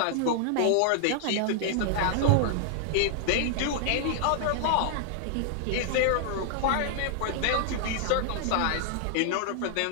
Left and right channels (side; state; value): both; different; correlation 0.00